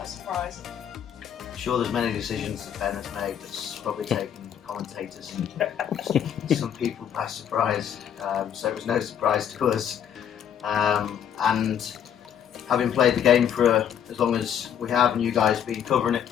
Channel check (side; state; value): right; quieter; 9.1 dB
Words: surprise. I'm sure there's many decisions that Ben has made that's probably taken commentators and some people by surprise, so it was no surprise to us. And having played the game for as long as we have, and you guys been covering it